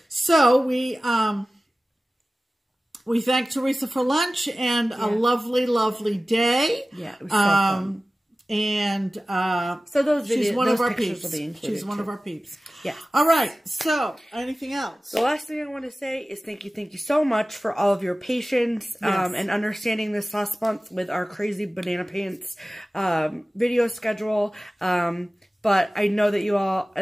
So we thank Theresa for lunch and a lovely, lovely day. Yeah, it was so fun. And so those videos, she's one of our peeps. She's one of our peeps. Yeah. All right. So, anything else? The last thing I want to say is thank you so much for all of your patience and understanding this last month with our crazy banana pants video schedule. But I know that you all,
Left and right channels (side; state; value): both; normal; correlation 0.97